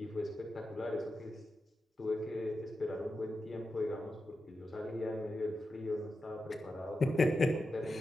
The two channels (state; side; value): normal; both; correlation 0.90